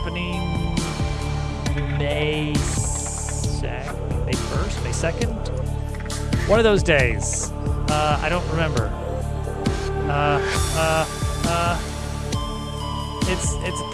May 1st, May 2nd? One of those days. I don't remember. It's a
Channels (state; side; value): identical; both; correlation 1.00